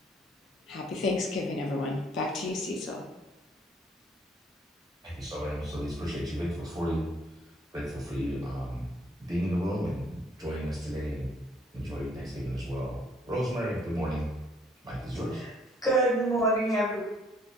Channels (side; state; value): both; normal; correlation 0.64